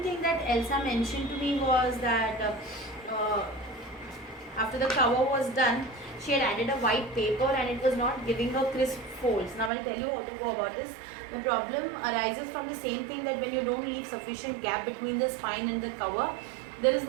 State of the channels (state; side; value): drops out; left; at 9.7 s